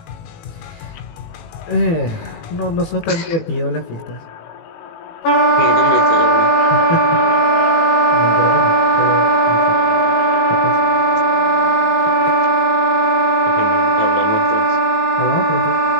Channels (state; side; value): late; right; 18 ms